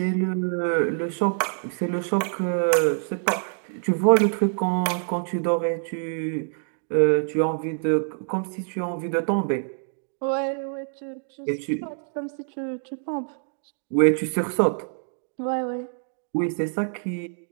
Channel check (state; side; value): silent; left; digital silence